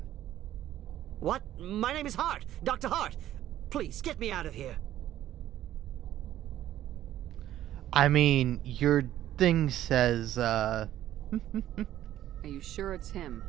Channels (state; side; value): quieter; left; 12.8 dB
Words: What? My name is Hart. Dr. Hart. Please, get me out of here. I mean, your thing says, Are you sure it's him?